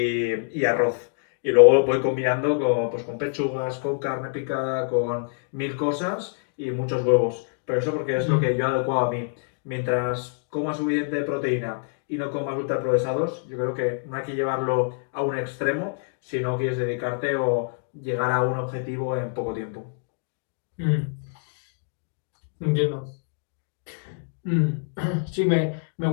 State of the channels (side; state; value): right; silent; digital silence